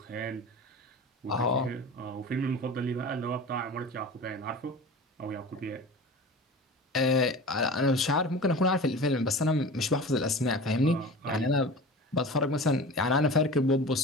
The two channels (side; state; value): both; normal; correlation 0.35